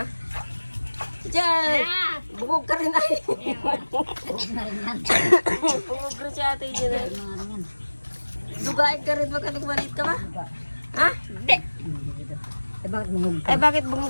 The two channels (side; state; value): both; inverted; correlation -1.00